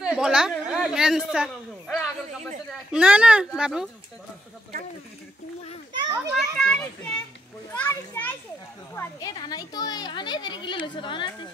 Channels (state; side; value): normal; both; correlation 0.78